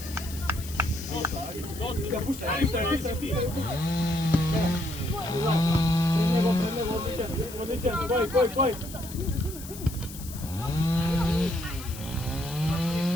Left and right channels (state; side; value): noise; left; hiss, 14 dB below the sound